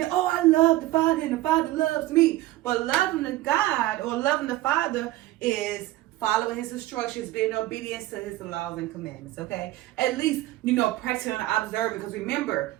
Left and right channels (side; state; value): left; quieter; 16.5 dB